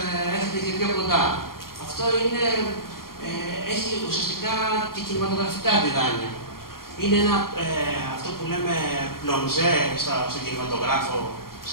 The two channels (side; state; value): right; late; 0.92 ms